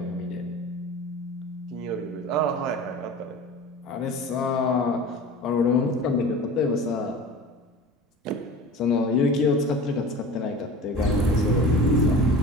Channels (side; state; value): both; normal; correlation 0.37